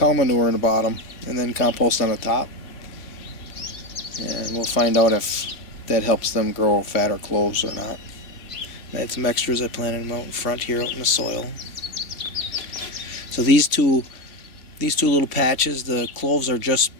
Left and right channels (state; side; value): late; right; 2.9 ms